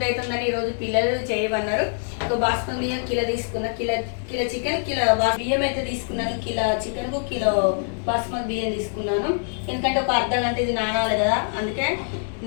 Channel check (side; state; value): right; silent; digital silence